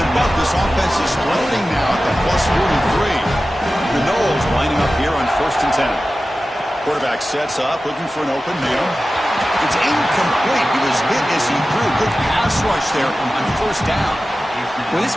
but this offense is floating now at the plus 43. The Knowles lining up here on 1st and 10. Quarterback sets up, looking for an open man. It's incomplete. He was hit as he threw. Good pass rush there on 1st down. When this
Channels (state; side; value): normal; both; correlation 0.95